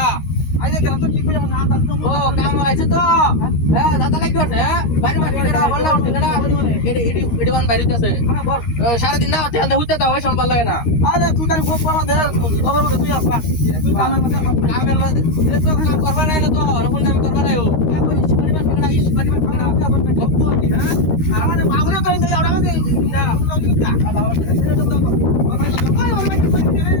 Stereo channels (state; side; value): late; right; 13 ms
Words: আইলে গেলাম তো কি কই না দাদা ও কাম আছে তো হ্যাঁ দাদা লাগি করতে বাড়ি মারতে কেডা বললা কেডা এডি ওয়ান বাইরে আছে হ্যাঁ বল সারা দিন না তেল দেউতে দাও সম্পাল লাগে না আরে তুই তার গোপ করা দে খবর বলে তুই আসবা তুই কামের মধ্যে এ তো কাম করবা না তো রকম কাম করবা না ও বাড়ি মারতে কেডা ইস বাড়ি মারতে কেডা গপ তো দি হ্যাঁ আমারে বাবুরে তো ইন্দে আড়া দে না বাবা ছেড়ে দাও তো